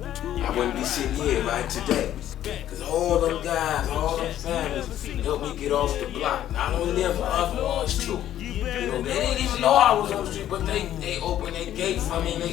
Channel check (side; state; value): right; quieter; 11.9 dB